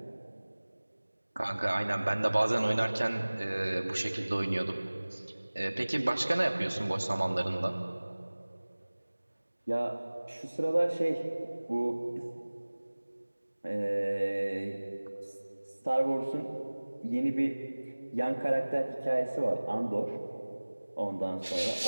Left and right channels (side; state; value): both; inverted; correlation -1.00